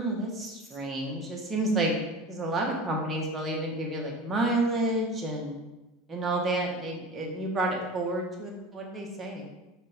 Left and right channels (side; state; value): both; normal; correlation 0.34